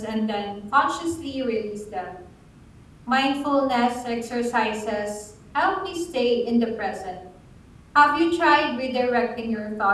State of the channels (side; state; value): both; identical; correlation 1.00